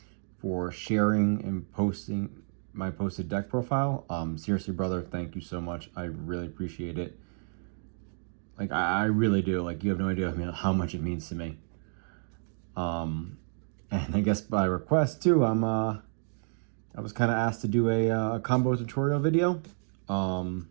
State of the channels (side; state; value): left; silent; digital silence